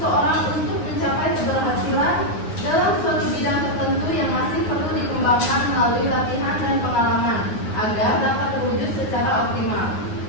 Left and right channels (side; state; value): right; late; 9.6 ms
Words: untuk mencapai keberhasilan dalam suatu bidang tertentu yang masih perlu dikembangkan melalui latihan dan pengalaman agar dapat terwujud secara optimal.